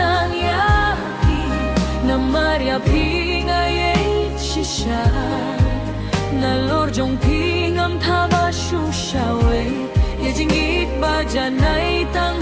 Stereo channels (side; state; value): both; identical; correlation 1.00